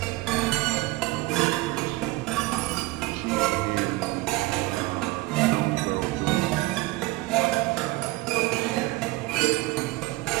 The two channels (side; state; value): left; quieter; 20.7 dB